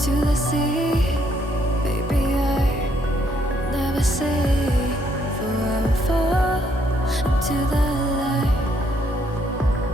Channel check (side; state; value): both; normal; correlation 0.70